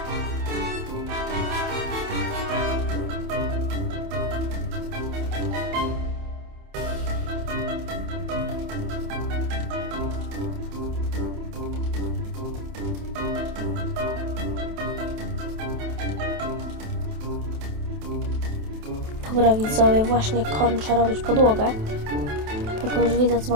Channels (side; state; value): left; late; 28 ms